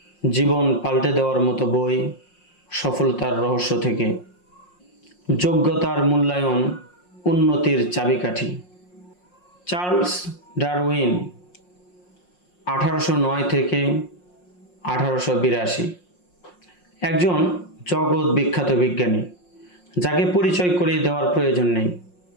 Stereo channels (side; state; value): right; late; 5.6 ms